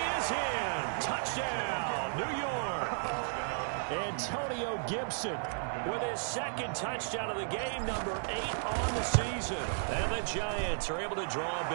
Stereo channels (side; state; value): left; silent; digital silence